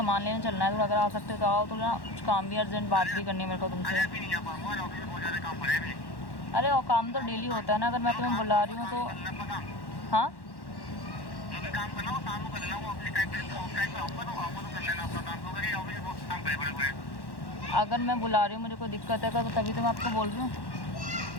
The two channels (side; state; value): right; late; 1.1 ms